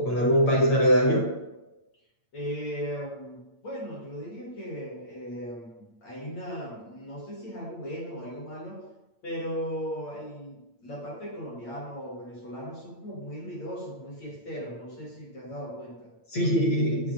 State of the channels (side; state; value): right; late; 8.7 ms